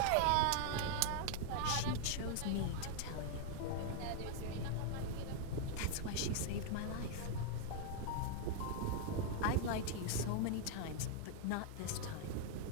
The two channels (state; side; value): different; both; correlation 0.00